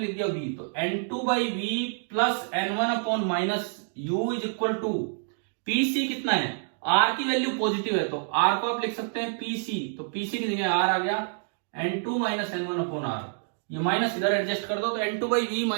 दिया V, तो N2 by v plus N1 upon minus u is equal to P C कितना है, R की वैल्यू पॉजिटिव है तो R को आप लिख सकते हैं PC, तो PC की जगह R आ गया N2 minus N1 upon R। ये माइनस इधर एडजस्ट कर दो तो N2 by v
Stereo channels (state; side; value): silent; left; digital silence